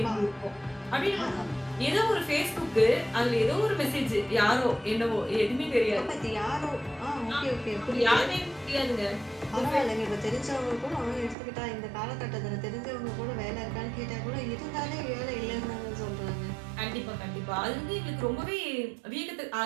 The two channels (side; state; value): left; drops out; at 11.4 s